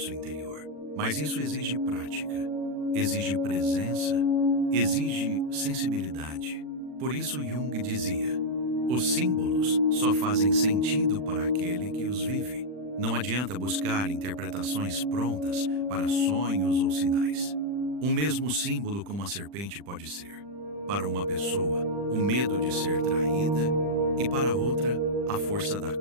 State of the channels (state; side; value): late; left; 40 ms